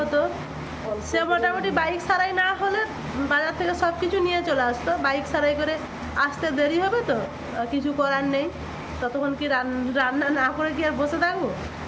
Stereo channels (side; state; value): both; identical; correlation 1.00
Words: হতো। সে মোটামুটি বাইক সারাই না হলে বাজার থেকে সব কিছু নিয়ে চলে আসতো। বাইক সারাই করে আসতে দেরি হবে, তো কিছু করার নেই। ততক্ষণ কি রান্না না করে কি আর বসে থাকবো?